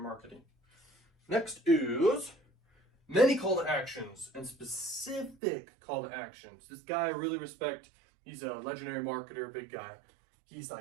marketing. Next is many call to actions and specific call to actions. This guy I really respect. He's a legendary marketer, big guy. He's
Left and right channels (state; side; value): drops out; left; at 5.4 s